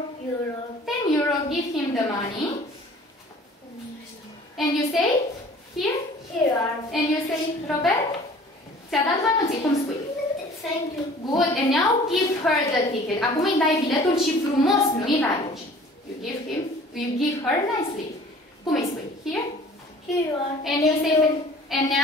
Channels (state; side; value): normal; both; correlation 0.49